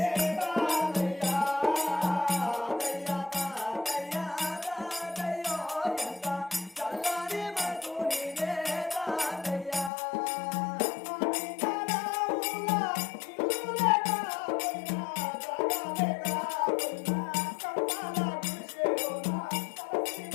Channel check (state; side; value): drops out; right; at 9.9 s